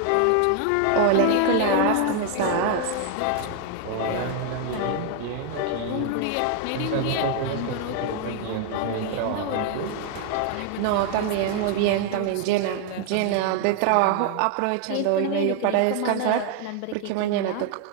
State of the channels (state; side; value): different; both; correlation 0.00